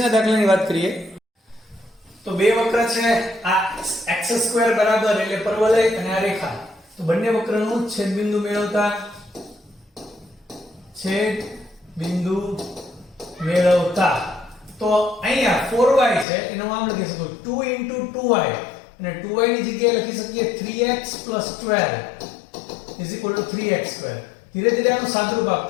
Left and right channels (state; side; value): drops out; right; at 16.2 s